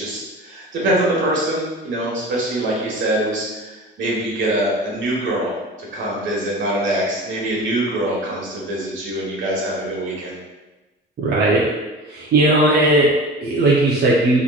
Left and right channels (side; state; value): both; normal; correlation 0.35